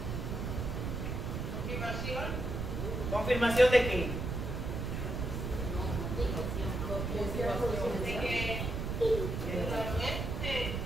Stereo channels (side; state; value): right; noise; rumble, 3 dB below the sound